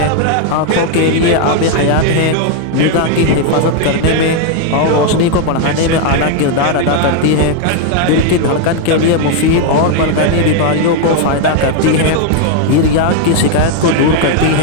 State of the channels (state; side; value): different; both; correlation 0.00